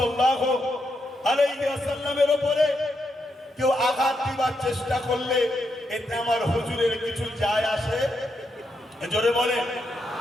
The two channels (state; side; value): normal; both; correlation 0.82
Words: আলাইহি ওয়াসাল্লামের উপরে কেউ আঘাত দিবার চেষ্টা করলে এতে আমার হুজুরের কিছু যায় আসে? জোরে বলেন,